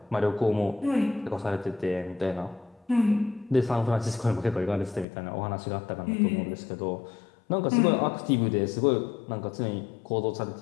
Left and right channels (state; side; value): drops out; right; at 5.1 s